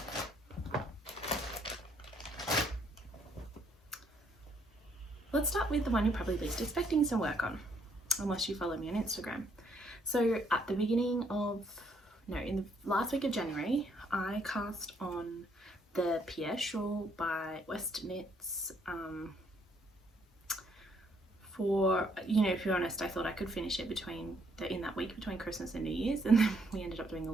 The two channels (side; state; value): both; normal; correlation 0.69